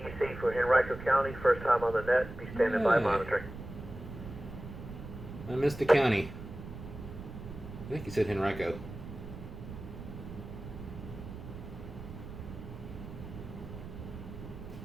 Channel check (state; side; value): noise; right; rumble, 11 dB below the sound